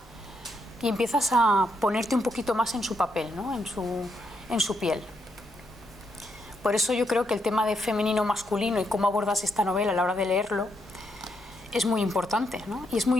y empiezas a ponerte un poquito más en su papel, ¿no? en su piel. Por eso yo creo que el tema de femenino-masculino y cómo abordas esta novela a la hora de leerlo es muy importante, ¿no? Y es muy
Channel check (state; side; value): normal; both; correlation 0.78